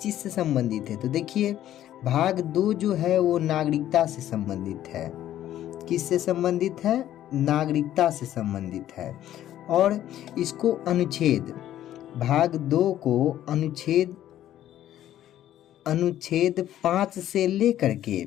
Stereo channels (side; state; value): right; quieter; 12.3 dB